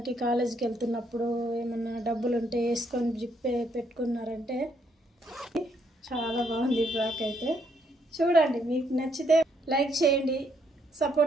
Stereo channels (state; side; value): normal; both; correlation 0.72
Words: కాలేజీకి వెళ్తున్నప్పుడు ఏమన్నా డబ్బులు ఉంటే వేసుకొని జిప్పే పెట్టుకున్నారంటే చాలా బాగుంది ఫ్రాక్ అయితే। చూడండి, మీకు నచ్చితే లైక్ చేయండి,